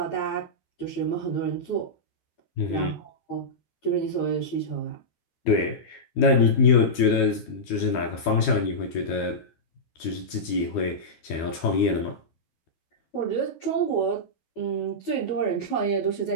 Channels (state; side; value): late; right; 12 ms